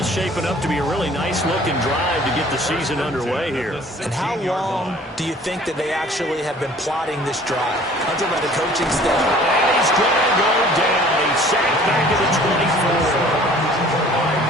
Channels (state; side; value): normal; both; correlation 0.51